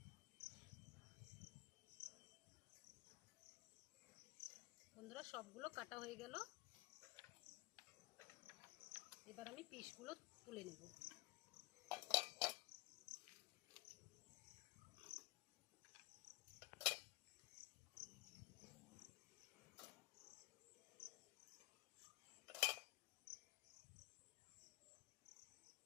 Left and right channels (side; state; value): right; quieter; 22.9 dB